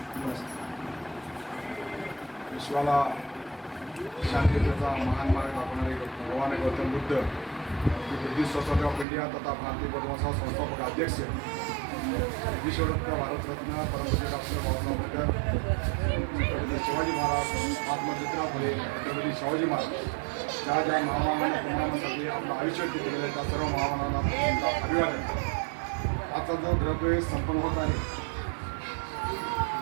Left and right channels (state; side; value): drops out; left; at 9.1 s